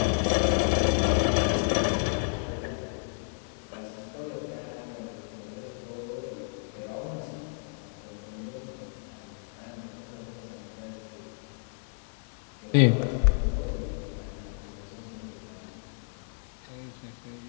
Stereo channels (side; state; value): right; silent; 57 dB below the other